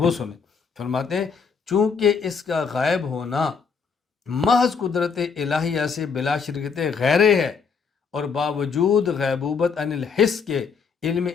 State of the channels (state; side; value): quieter; right; 5.7 dB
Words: سنیں۔ فرماتے ہیں چونکہ اس کا غائب ہونا محض قدرت الہیہ سے بلا شرکت غیرے ہے، اور باوجود غیبوبت عن الحس کے علم